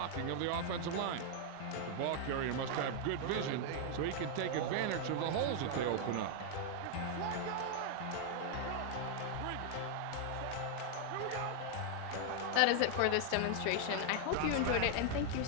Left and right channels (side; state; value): both; different; correlation 0.00